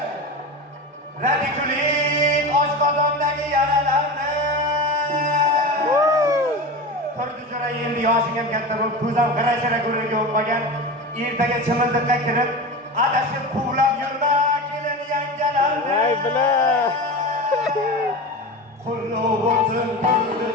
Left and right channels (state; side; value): normal; both; correlation 0.27